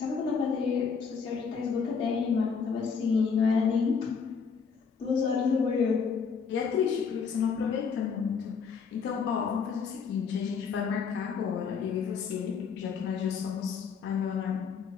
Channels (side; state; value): right; quieter; 5.9 dB